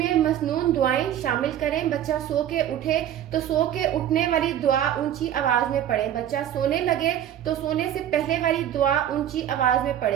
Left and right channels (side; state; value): left; quieter; 11.0 dB